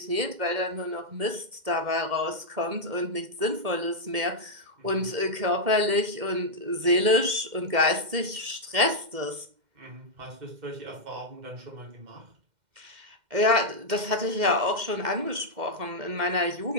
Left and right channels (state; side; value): late; left; 2.1 ms